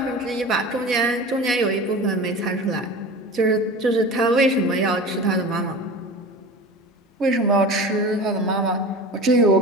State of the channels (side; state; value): both; normal; correlation 0.34